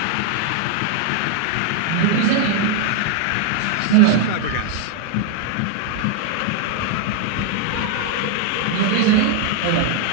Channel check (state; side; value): different; both; correlation 0.00